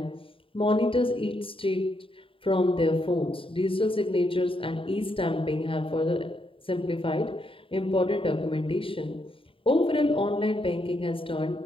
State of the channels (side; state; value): right; late; 0.26 ms